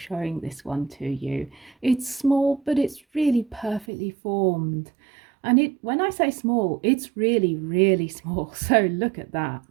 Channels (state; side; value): drops out; left; at 3.9 s